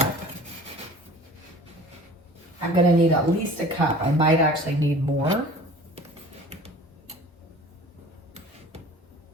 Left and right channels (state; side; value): normal; both; correlation 0.45